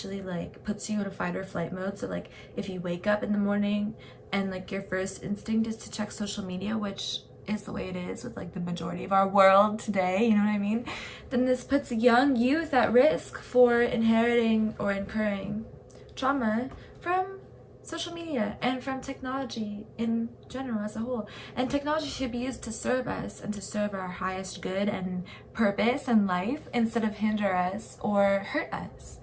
like puts you in a fight or flight mode. So like if you wake up in the morning and like your first instinct is to check social media, which is the way it is with like the majority of our world today, you know what I mean, then this puts young youth at risk for inheriting or incurring trauma from social media and from technology in general as a whole. And technology should be used to serve us and to serve our highest good and purpose in life instead of hinder us or hurt us.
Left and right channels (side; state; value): both; identical; correlation 1.00